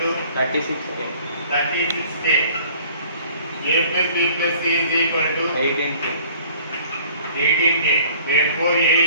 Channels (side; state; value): both; inverted; correlation -0.52